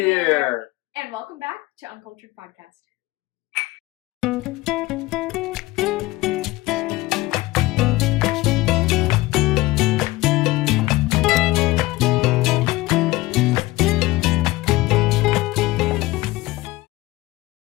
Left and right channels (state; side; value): quieter; right; 19.5 dB